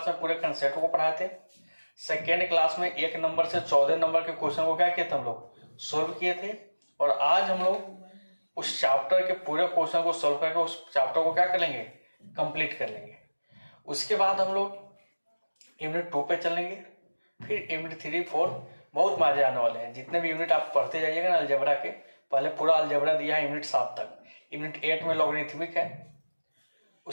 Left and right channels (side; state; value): both; inverted; correlation -1.00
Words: में पूरे कंसेप्ट को पढ़ाए थे, सेकेंड क्लास में 1 नंबर से 14 नंबर के क्वेश्चन को क्या किए थे हम लोग सॉल्व किए थे। और आज हम लोग उस चैप्टर के पूरे क्वेश्चन को सॉल्व करके उस चैप्टर को क्या कर लेंगे, कंप्लीट कर लेंगे। उसके बाद हम लोग यूनिट 2 पे चलेंगे, फिर यूनिट 3, 4 बहुत मजे आने वाले हैं। जितने भी यूनिट आप पढ़ते जाइएगा ना अलजेब्रा के, पहले पूरा अलजेब्रा दिया है यूनिट 7 तक, यूनिट 8 में लॉगरिथमिक है,